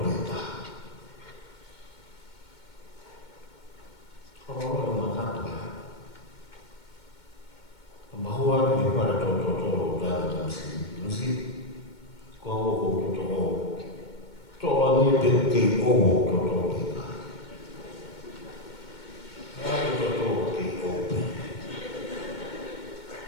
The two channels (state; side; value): late; right; 2.2 ms